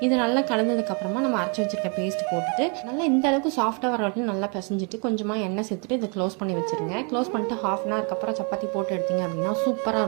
இது நல்லா கலந்ததுக்கப்புறமா நம்ம அரைச்சி வச்சிருக்க பேஸ்ட் போட்டுட்டு நல்லா இந்த அளவுக்கு சாஃப்டாக வர வரைக்கும் நல்லா பிசைஞ்சிட்டு கொஞ்சமாக எண்ணெய் சேர்த்துட்டு இதை க்ளோஸ் பண்ணி வச்சுருங்க. க்ளோஸ் பண்ணிட்டு ஹாஃப் அன் ஹவருக்கு அப்புறம் சப்பாத்தி போட்டு எடுத்தீங்க அப்படின்னா சூப்பராக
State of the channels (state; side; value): quieter; left; 37.1 dB